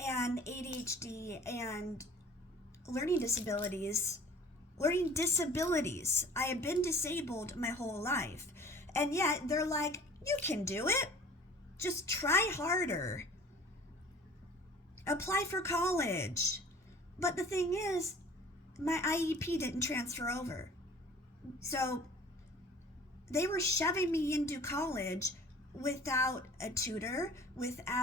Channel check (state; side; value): normal; both; correlation 0.47